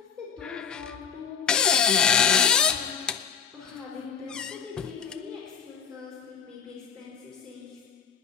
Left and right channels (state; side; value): quieter; right; 6.8 dB